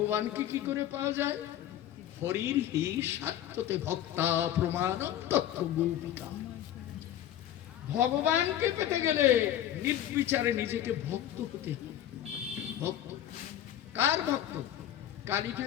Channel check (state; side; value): quieter; right; 11.6 dB